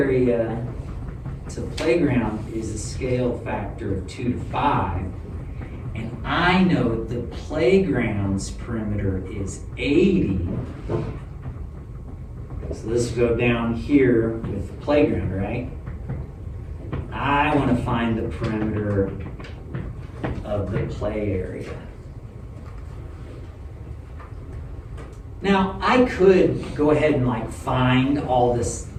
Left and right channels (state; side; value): identical; both; correlation 1.00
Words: to playground is a scale factor of 2 to 5. And I know the playground's perimeter is 80. So this will go down here with the playground, right? I want to find the perimeter of the play area. Now, I could go ahead and like find all this,